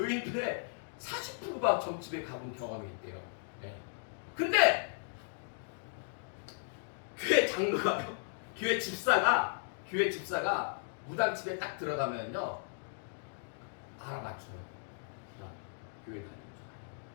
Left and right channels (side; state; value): right; silent; digital silence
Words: 40%가 점집에 가본 경험이 있대요. 근데 교회 장로가 교회 집사가 무당집에 딱 들어가면요 알아맞혀요. 교회 다니는 줄.